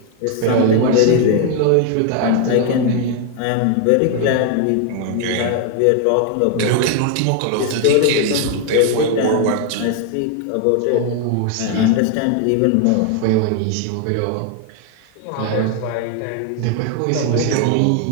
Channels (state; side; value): different; both; correlation 0.00